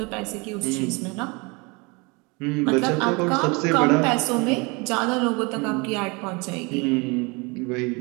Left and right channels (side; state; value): left; quieter; 28.1 dB